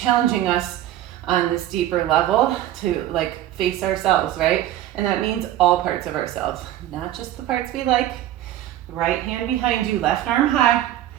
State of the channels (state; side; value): quieter; left; 13.2 dB